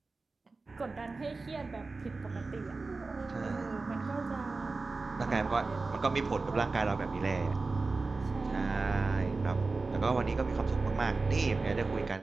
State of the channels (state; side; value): quieter; left; 3.8 dB